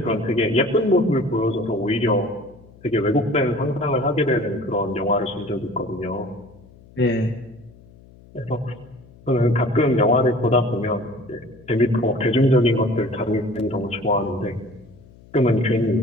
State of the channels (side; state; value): left; noise; hum, 24 dB below the sound